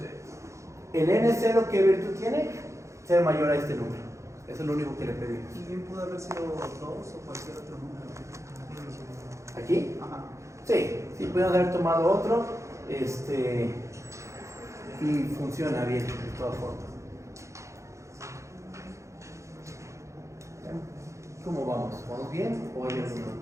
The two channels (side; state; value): left; late; 0.14 ms